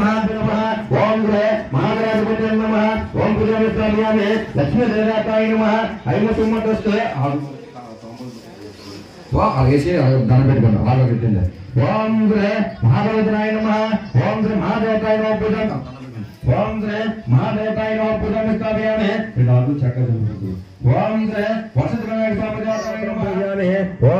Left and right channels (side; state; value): both; identical; correlation 1.00